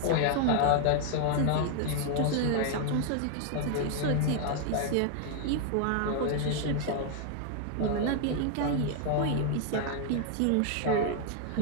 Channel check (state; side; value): different; both; correlation 0.00